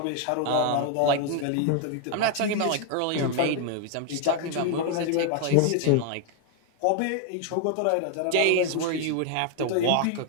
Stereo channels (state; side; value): different; both; correlation 0.00